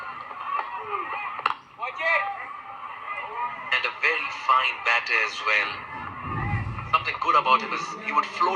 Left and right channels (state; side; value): identical; both; correlation 1.00